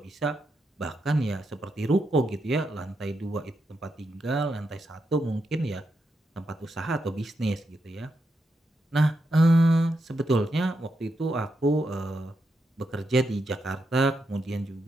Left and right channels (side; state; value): both; normal; correlation 0.84